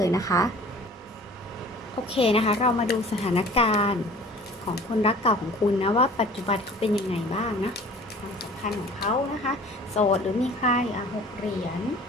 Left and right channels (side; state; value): both; normal; correlation 0.47